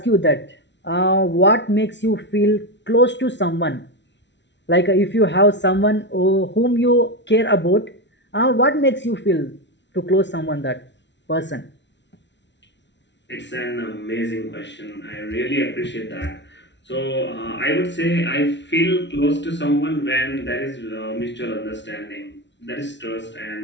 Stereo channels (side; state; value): right; late; 0.51 ms